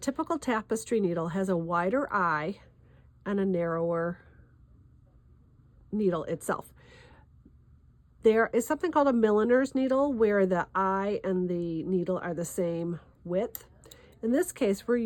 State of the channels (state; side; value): identical; both; correlation 1.00